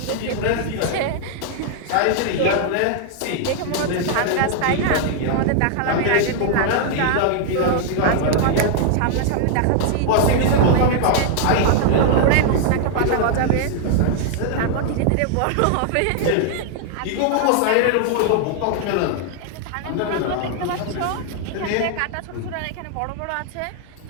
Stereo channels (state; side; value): different; both; correlation 0.00